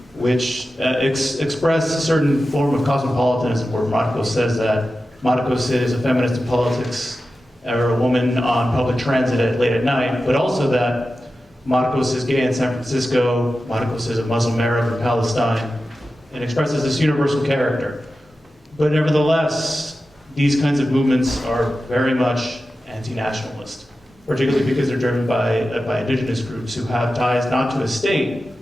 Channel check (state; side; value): normal; both; correlation 0.93